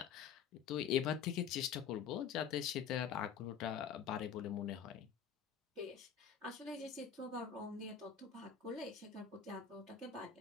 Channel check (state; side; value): quieter; right; 7.8 dB